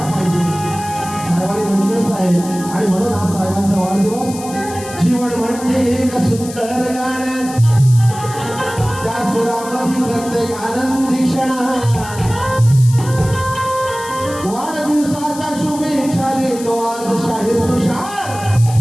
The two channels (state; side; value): noise; left; hiss, 14 dB below the sound